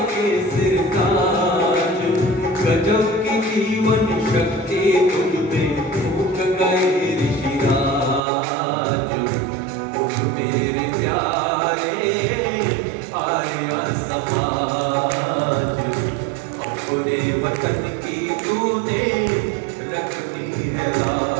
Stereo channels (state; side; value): drops out; left; at 8.2 s